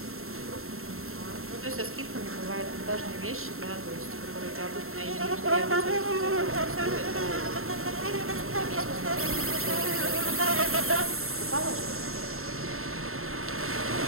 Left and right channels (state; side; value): late; left; 0.62 ms